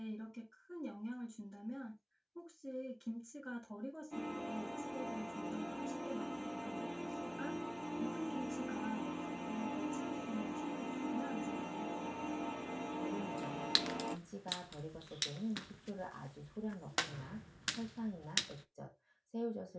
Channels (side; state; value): both; identical; correlation 1.00